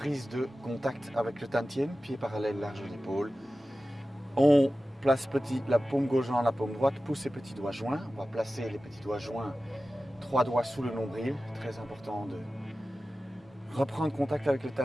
de contact avec le tantien, pied parallèle, large d'épaule. On place la paume gauche dans la paume droite, pousse les petits doigts joints. On va placer les petits doigts joints, 3 doigts sous le nombril. Très important de reprendre contact avec le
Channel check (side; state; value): both; normal; correlation 0.95